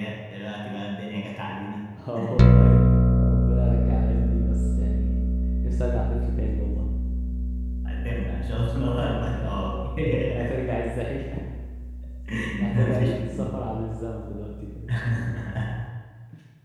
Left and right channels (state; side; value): identical; both; correlation 1.00